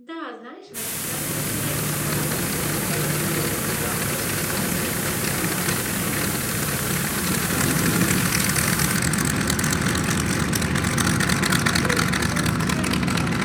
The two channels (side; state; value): both; identical; correlation 1.00